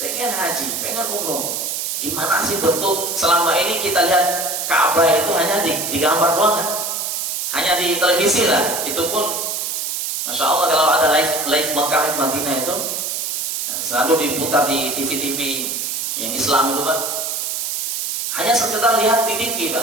haji, pengen umroh. Gimana sih bentuk selama ini kita lihat Ka'bah itu hanya digambar doang kan? Hanya di televisi lah. Itu pun Masya Allah kalau ada live Makkah, live Madinah itu selalu diputar di TV-TV yang Islam itu, Pak. Hanya sekedar lihat di TV,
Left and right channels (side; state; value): right; noise; hiss, 2 dB below the sound